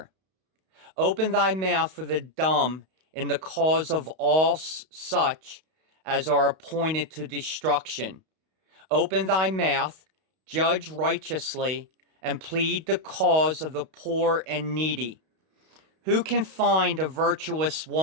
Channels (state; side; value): late; left; 32 ms